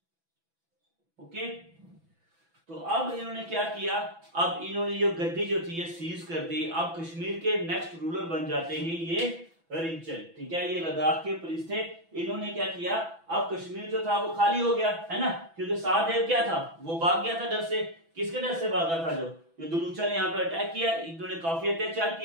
ओके, तो अब इन्होंने क्या किया, अब इन्होंने ये गद्दी जो थी ये सीज कर दी। अब कश्मीर के नेक्स्ट रूलर बन जाते हैं ये रिंचन। ठीक है, ये लद्दाख के प्रिंस थे। इन्होंने क्या किया, अब कश्मीर जो था वो खाली हो गया है ना, क्योंकि सहदेव क्या था, वो भाग गया था डर से। किसके डर से भागा था? जो दुलूचा ने यहाँ पे अटैक किया, इन्होंने काफी अत्याचार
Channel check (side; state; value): left; late; 6.0 ms